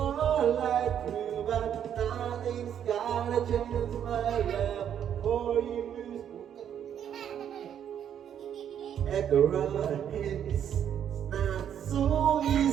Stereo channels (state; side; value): quieter; left; 9.2 dB